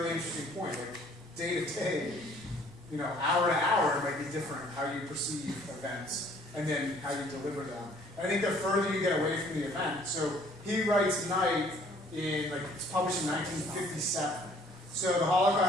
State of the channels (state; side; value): noise; right; rumble, 25 dB below the sound